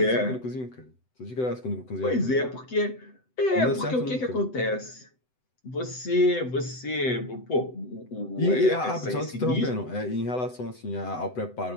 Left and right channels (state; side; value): late; right; 7.9 ms